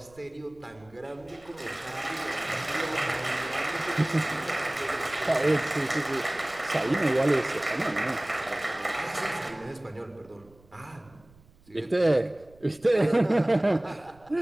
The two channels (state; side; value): noise; right; rumble, 27 dB below the sound